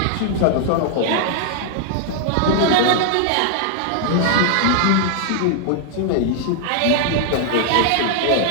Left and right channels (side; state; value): both; different; correlation 0.00